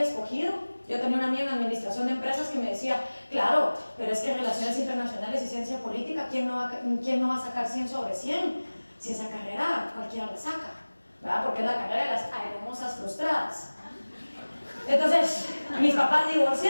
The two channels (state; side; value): inverted; both; correlation -1.00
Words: escogido. Yo tenía una amiga en administración de empresas que me decía, claro, pero es que relaciones internacionales y ciencia política, ¿quién no va a sacar 100 sobre 100? Si esa carrera cualquiera la saca, ¿verdad? Porque es la carrera de las hermosas frustradas. Entonces, mis papás